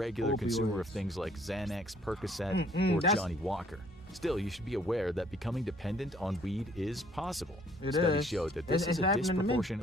Opioids. consumer of things like Xanax, Percocet, or that's- Johnny Walker. Still, you should be aware that becoming dependent on weed is possible. It Studies is. show that this It's is a happening to me.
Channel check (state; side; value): normal; both; correlation 0.61